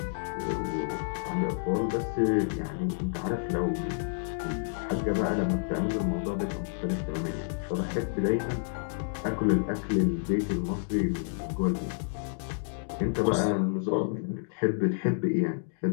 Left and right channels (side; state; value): right; silent; digital silence